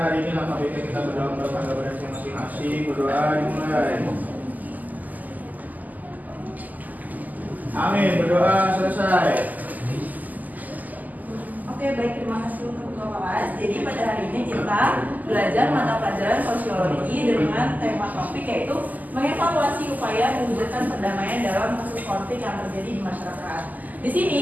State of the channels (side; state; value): left; late; 0.081 ms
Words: hari ini, langkah baiknya kita berdoa menurut tangga berarti masing-masing. Berdoa dimulai. Amin. Berdoa selesai. Oke, baik, terima kasih untuk ketua kelas. Jadi pada hari ini kita belajar mata pelajaran sosiologi dengan tema topik yaitu mengevaluasi upaya mewujudkan perdamaian dalam kasus konflik yang terjadi di masyarakat. Di